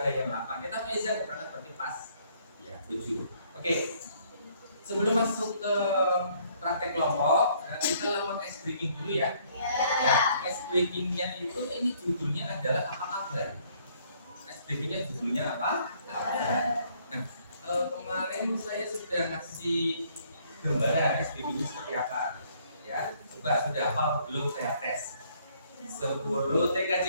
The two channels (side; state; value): both; inverted; correlation -0.64